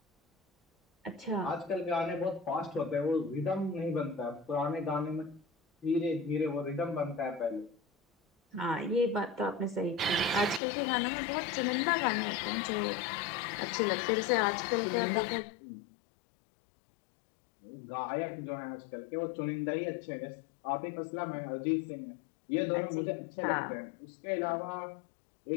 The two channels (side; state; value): right; drops out; at 10.6 s